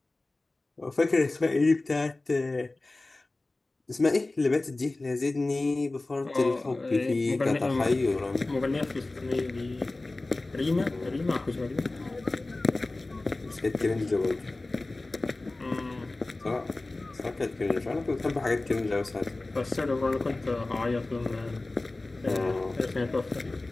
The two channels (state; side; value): quieter; right; 3.0 dB